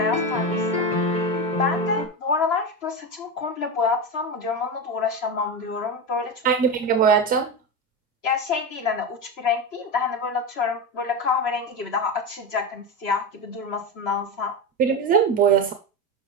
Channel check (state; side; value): normal; both; correlation 0.17